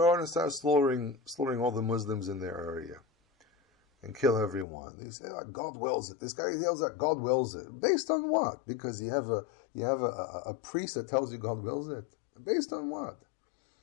on and start slaughtering all the Muslims in their area and kill everyone. They say, God wills it. This guy yells that God wills it. Based on what? Because you have a priest that tells you God wills it. Based on what?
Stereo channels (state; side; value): drops out; right; at 4.7 s